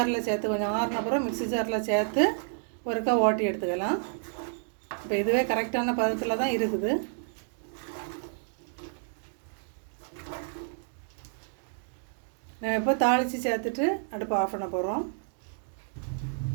சேர்த்து கொஞ்சம் ஆறின அப்புறம் மிக்ஸி ஜாரில் சேர்த்து ஒருக்கா ஓட்டி எடுத்துக்கலாம். இப்போ இதுவே கரெக்டான பதத்தில் தான் இருக்குது. நம்ம இப்போ தாளித்து சேர்த்துட்டு அடுப்பு ஆஃப் பண்ண போகிறோம்.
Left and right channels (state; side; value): silent; left; digital silence